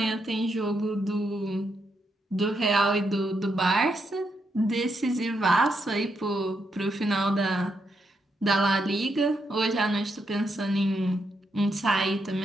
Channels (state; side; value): normal; both; correlation 0.80